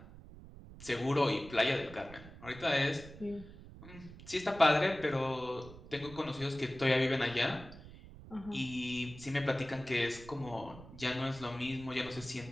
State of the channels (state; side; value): noise; right; rumble, 16 dB below the sound